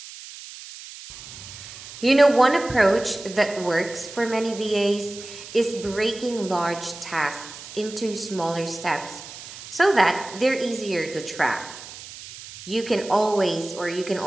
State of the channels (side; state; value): right; noise; hiss, 14 dB below the sound